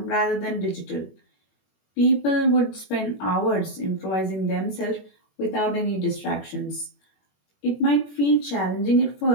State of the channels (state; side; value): late; right; 21 ms